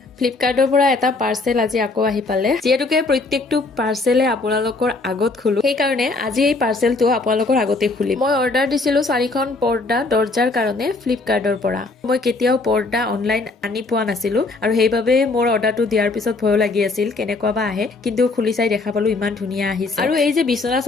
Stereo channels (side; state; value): right; quieter; 3.5 dB